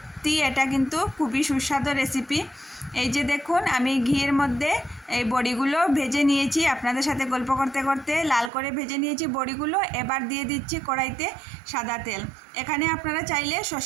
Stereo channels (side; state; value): left; drops out; at 8.5 s